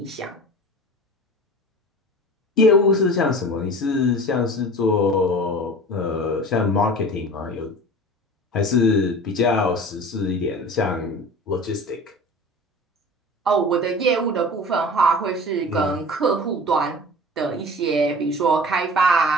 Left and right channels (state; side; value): normal; both; correlation 0.38